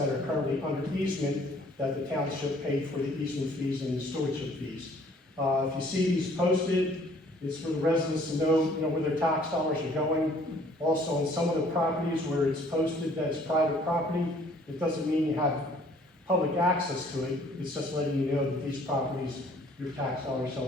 are currently under easement that the township paid for the easement fees and the stewardship fees. If you see these posted, it's for the residents to know, where their tax dollars are going. Also, on some of the properties where it's posted that it's private property, it doesn't mean you have public access to it. It's just letting you know that these properties, your tax dollars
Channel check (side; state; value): both; normal; correlation 0.58